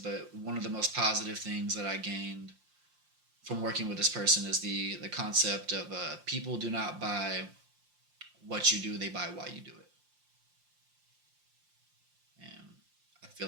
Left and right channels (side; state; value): left; late; 5.7 ms